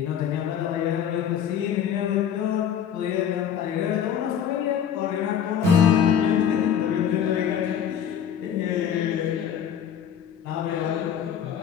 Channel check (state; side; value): quieter; right; 8.7 dB